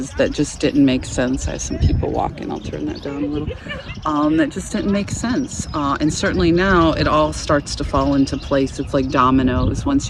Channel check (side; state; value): both; identical; correlation 1.00